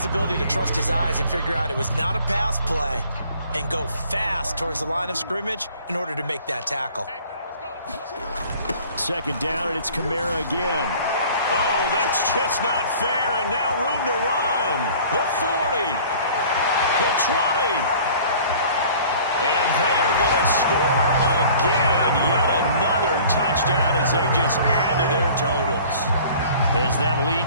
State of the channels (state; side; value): inverted; both; correlation -0.49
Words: ability to trust his eyes and figure out it was not a pass play and go fast towards the line of scrimmage in order to make that tackle. 2nd down, and it's Kamara again. Oh, that's just not fair, and now room to run. The 40, the 20, and they are going to score again. Yet another touchdown as they just add to their totals. As that